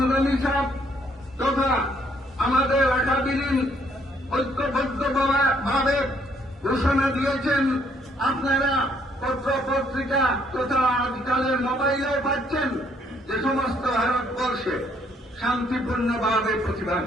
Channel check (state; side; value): normal; both; correlation 0.68